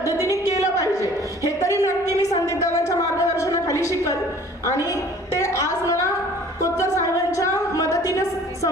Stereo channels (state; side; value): normal; both; correlation 0.51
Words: केलं पाहिजे हे तरी नक्की मी संदीप दादांच्या मार्गदर्शनाखाली शिकल आणि ते आज मला कोतकर साहेबांच्या मदतीने